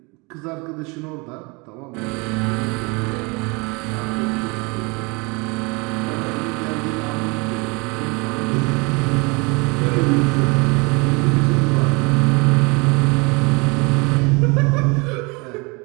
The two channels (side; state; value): left; quieter; 28.5 dB